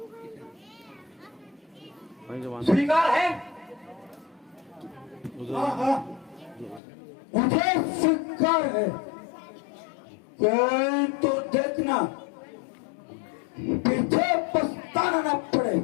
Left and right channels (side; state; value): right; drops out; at 6.8 s